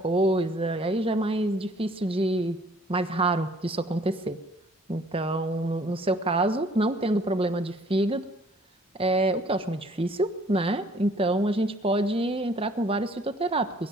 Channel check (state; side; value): normal; both; correlation 0.58